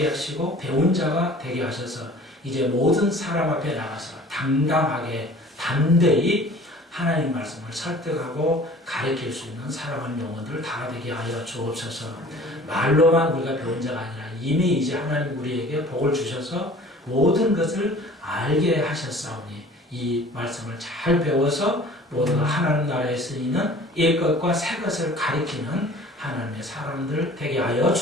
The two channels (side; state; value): both; normal; correlation 0.47